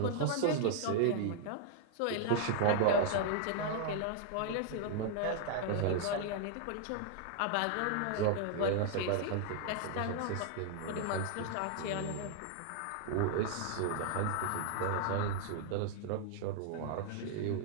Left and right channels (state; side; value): different; both; correlation 0.00